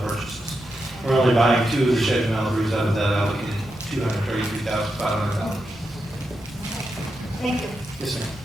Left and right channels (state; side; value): normal; both; correlation 0.86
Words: purchases. We're only buying 2 of the Chevy Malibus out of that allocated $233,500. Thank you. Yes, ma'am.